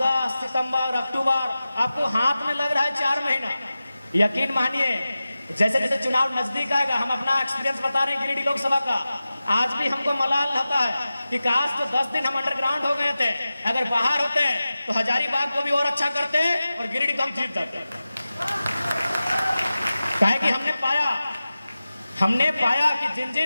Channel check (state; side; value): inverted; both; correlation -0.95